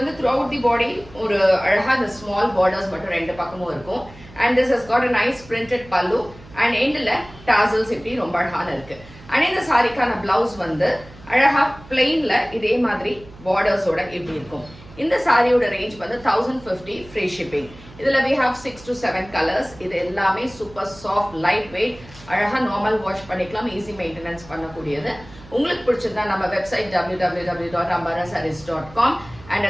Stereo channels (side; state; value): right; noise; hum, 20 dB below the sound